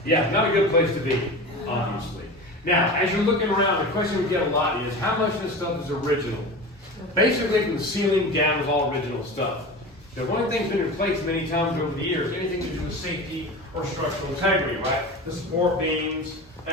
Yeah, not a good place to be, obviously. Now, as you're looking around, the question we get a lot is, how much of this stuff is original? Basically, from the ceiling down is all original stuff. The one thing's been replaced many times over the years, anything to do with safety or structural integrity, right? The support beams,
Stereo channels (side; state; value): both; normal; correlation 0.31